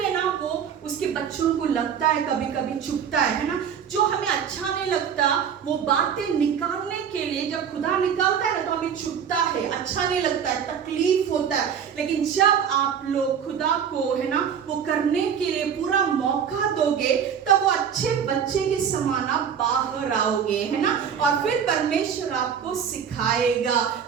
ना वो उसके बच्चों को लगता है, कभी कभी चुभता है ना। जो हमें अच्छा नहीं लगता वो बातें निकालने के लिए जब खुदा निकालता है ना तो हमें चुभता है, अच्छा नहीं लगता है, तकलीफ होता है। लेकिन जब आप लोग खुदा को, है ना, वो करने के लिए पूरा मौका दोगे तब वो अच्छे बच्चे के समान आप बाहर आओगे, है ना। और फिर परमेश्वर आपको सिखाएगा,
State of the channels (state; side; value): quieter; left; 7.7 dB